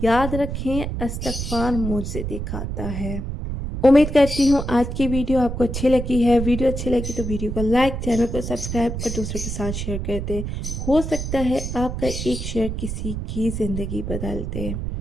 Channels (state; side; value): noise; right; rumble, 4 dB below the sound